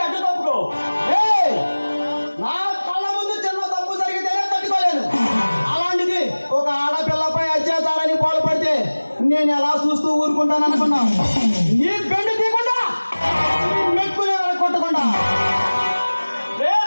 అడ్డు తప్పుకో. ఏయ్, నా కళ్ళ ముందు చిన్న తప్పు జరిగితేనే తట్టుకోలేను. అలాంటిది ఒక ఆడపిల్లపై అత్యాచారాన్ని పాల్పడితే నేను ఎలా చూస్తూ ఊరుకుంటాను అనుకున్నా? నీ బెండు తీయకుండా నీ మెక్కునే కొట్టకుండా. రే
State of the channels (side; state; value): both; inverted; correlation -1.00